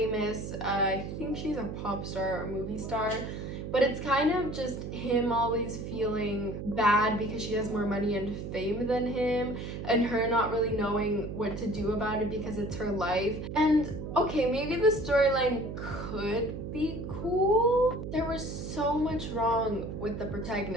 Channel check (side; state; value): right; noise; hum, 7 dB below the sound